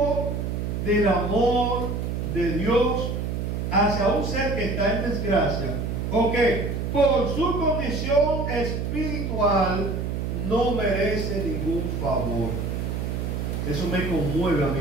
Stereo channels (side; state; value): right; noise; hum, 2 dB below the sound